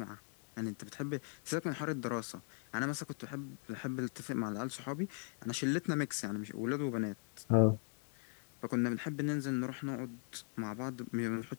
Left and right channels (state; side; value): silent; right; 52 dB below the other